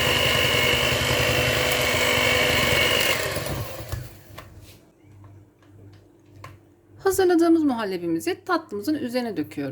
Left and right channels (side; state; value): both; identical; correlation 1.00